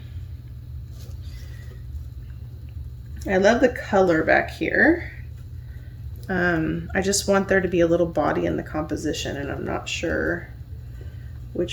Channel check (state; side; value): identical; both; correlation 1.00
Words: I love the color back here. I just want there to be a little body in the composition, and I'm not sure